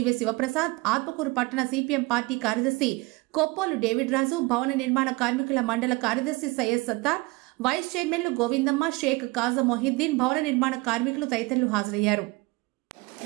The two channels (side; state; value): left; quieter; 24.3 dB